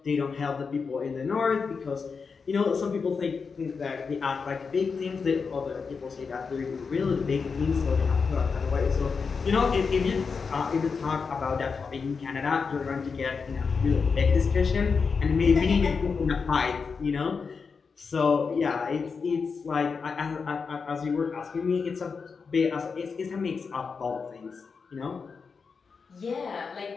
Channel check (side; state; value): right; quieter; 5.2 dB